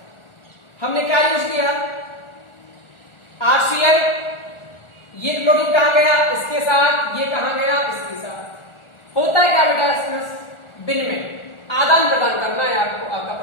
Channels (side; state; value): right; late; 1.4 ms